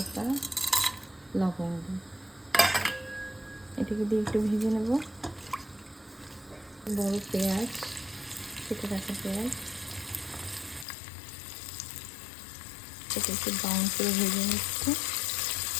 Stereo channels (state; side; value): drops out; right; at 10.9 s